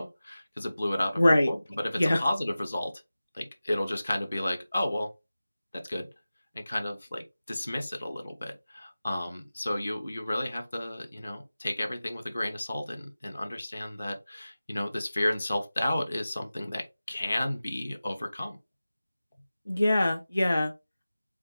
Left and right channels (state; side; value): inverted; both; correlation -0.96